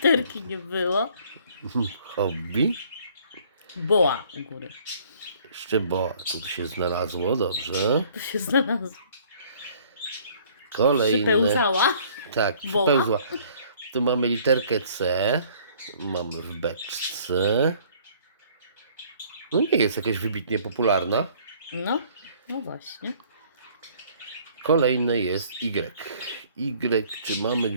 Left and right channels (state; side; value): inverted; both; correlation -0.57